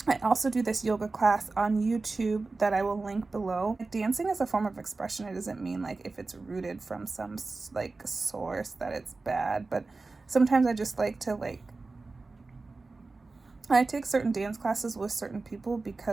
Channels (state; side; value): quieter; left; 3.6 dB